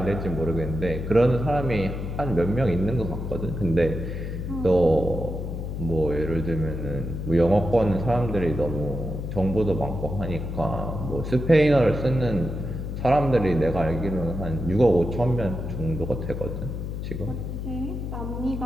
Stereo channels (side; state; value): left; noise; hum, 5 dB below the sound